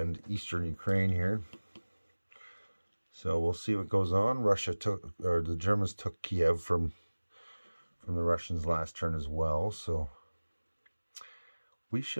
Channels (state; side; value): inverted; both; correlation -1.00